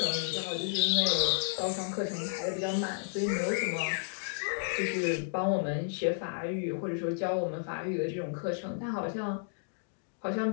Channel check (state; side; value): silent; right; digital silence